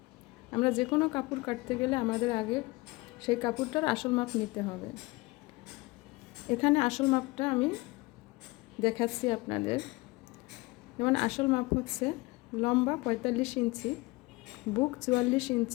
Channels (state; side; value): quieter; right; 23.1 dB